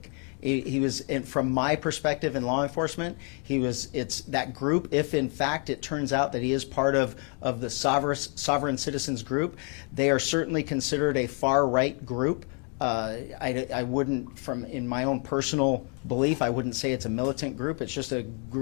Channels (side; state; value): right; quieter; 38.7 dB